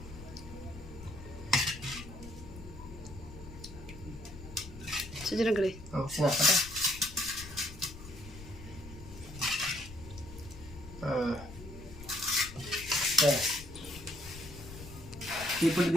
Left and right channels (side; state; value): left; noise; rumble, 14 dB below the sound